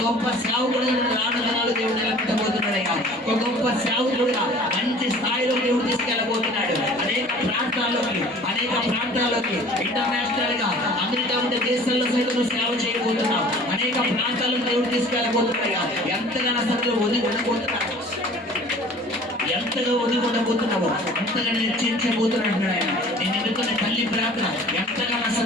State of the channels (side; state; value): both; normal; correlation 0.47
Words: గొప్ప సేవకుడుగా రానున్నాడు దేవుడు నిలబెట్టబోతున్నాడయ్యా. ఒక గొప్ప సేవకుడుగా మంచి స్థాయిలో దేవుడు తీసుకెళ్ళబోతున్నాడు. అనేక ప్రాంతాల్లోకి ఇంటర్నేషనల్ గా అమెరికా ఉండే దేశాల్లో సైతం సేవ చేయబోతున్నావు. అనేక ప్రాంతాల్లో దేవుడు తీసుకెళ్ళబోతున్నాయా. ఎంతగా అసలు ఎంతగా ఒదిగొట్టబోతున్నావో అంతగా హెచ్చరించబోతున్నాడు ఆయన. నేను ఎన్నుకున్న తల్లి ప్రార్థన ఎంతగా